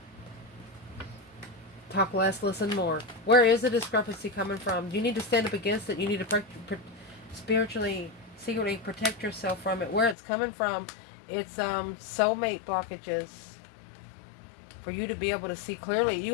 Talk less, listen more. Where is the discrepancy coming from? You need to stand up against it. You need to spiritually, secretly protect yourself from it. Where it's coming from, it's soulmate blockages. For you to be able to see clearly.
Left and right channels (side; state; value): right; drops out; at 10.2 s